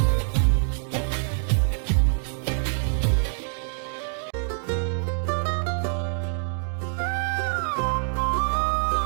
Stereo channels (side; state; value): left; silent; digital silence